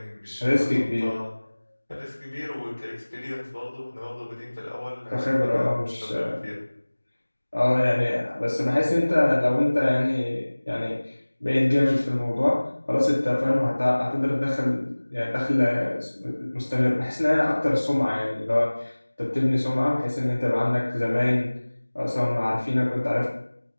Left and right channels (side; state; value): both; inverted; correlation -1.00